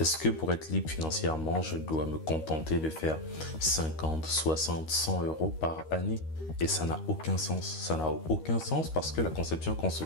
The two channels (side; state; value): right; late; 13 ms